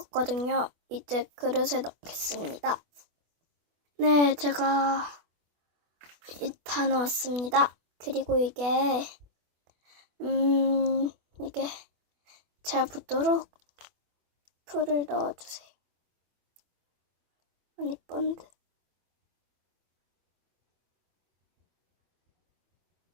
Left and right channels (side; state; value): left; late; 24 ms